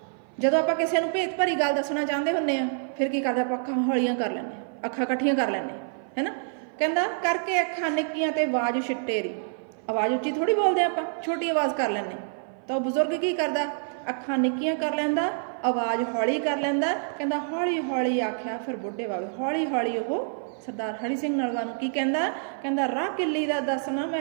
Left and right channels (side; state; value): left; silent; 55 dB below the other